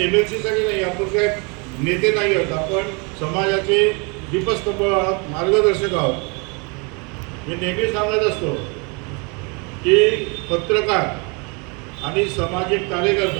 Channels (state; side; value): quieter; left; 31.8 dB